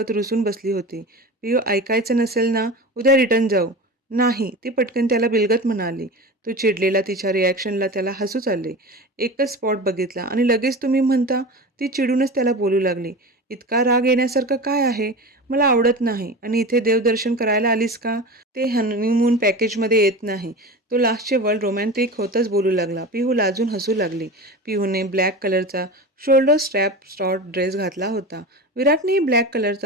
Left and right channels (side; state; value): both; normal; correlation 0.30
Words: रुसून बसली होती. पिहू ऐकायचं नसेल ना, उद्या रिटर्न जाऊ. नाही, ती पटकन त्याला बिलगत म्हणाली. तो चिडलेला तिच्या रिॲक्शनला त्याला हसूच आले. एकच स्पॉट बघितला आणि लगेच तुम्ही म्हणता. ती चिडूनच त्याला बोलू लागली. इतका राग येण्यासारखं काय आहे? मला आवडत नाही आणि इथे देवदर्शन करायला आलीस का? ते हनीमून पॅकेजमध्ये येत नाही. तो लास्टचे वर्ड रोमॅन्टिक होतच बोलू लागला. पिहू लाजून हसू लागली. पिहूने ब्लॅक कलरचा शोल्डर स्ट्रॅप शॉर्ट ड्रेस घातला होता. विराटनेही ब्लॅक